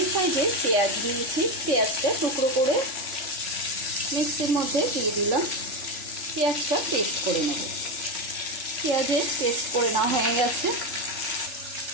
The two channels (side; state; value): left; late; 3.4 ms